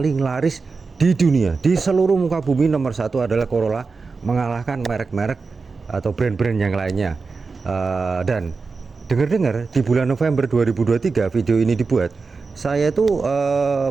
laris di dunia. Di seluruh muka bumi nomor satu adalah Corolla, mengalahkan merek-merek atau brand-brand yang lainnya. Dan dengar-dengar di bulan November 2023 video ini dibuat, saya tuh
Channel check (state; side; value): quieter; left; 4.4 dB